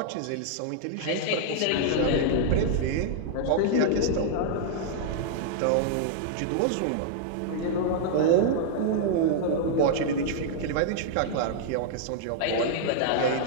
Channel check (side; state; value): both; different; correlation -0.01